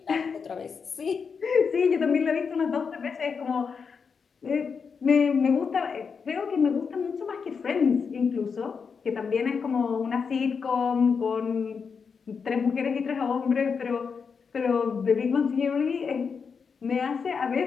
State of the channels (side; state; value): right; quieter; 5.8 dB